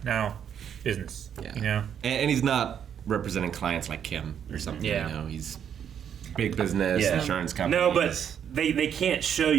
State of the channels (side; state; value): left; quieter; 8.6 dB